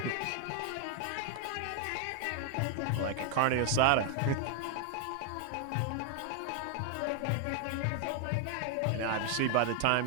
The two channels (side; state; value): both; different; correlation 0.01